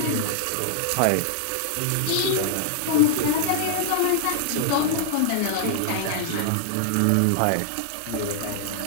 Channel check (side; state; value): both; different; correlation -0.01